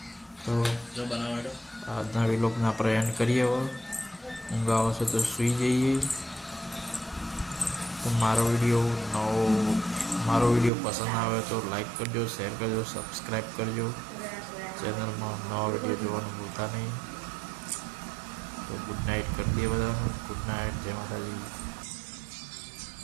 તો આજના વિલોગના આપણે એન્ડ કરીએ. હવે ઊંઘ આવે છે તો સૂઈ જઈએ. તો મારો વિડીયો પસંદ આવે તો લાઈક કરજો, શેર કરજો, સબસ્ક્રાઈબ કરજો. ચેનલમાં નવા વિડીયો જોવાનું ભૂલતા નહીં. તો ગુડ નાઇટ કરી દઈએ બધાને. ગુડ નાઇટ, જય માતાજી.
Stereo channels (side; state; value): left; drops out; at 10.7 s